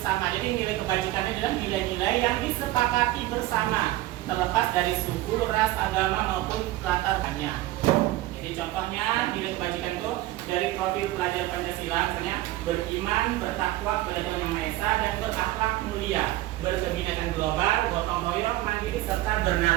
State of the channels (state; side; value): quieter; left; 16.5 dB